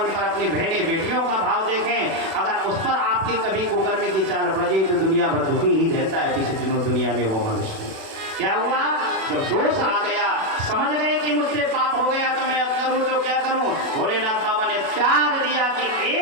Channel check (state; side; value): late; left; 37 ms